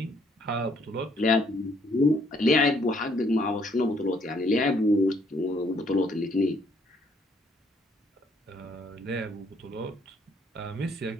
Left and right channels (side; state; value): both; normal; correlation 0.67